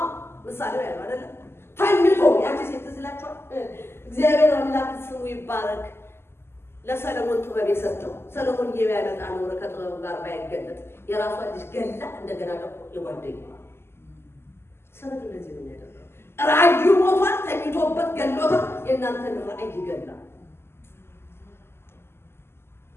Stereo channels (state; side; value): late; right; 0.12 ms